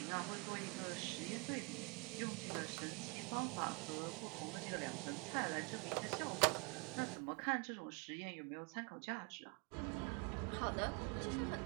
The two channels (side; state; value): left; quieter; 31.3 dB